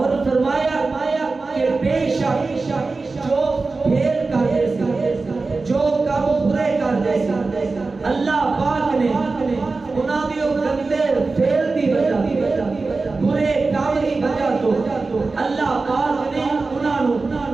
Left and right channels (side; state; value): left; quieter; 3.8 dB